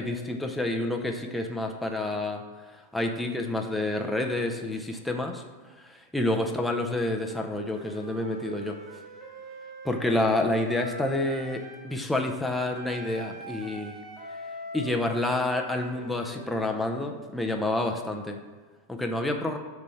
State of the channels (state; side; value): normal; both; correlation 0.59